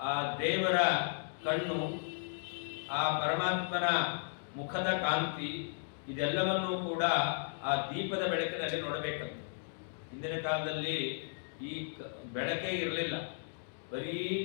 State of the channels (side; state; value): right; silent; digital silence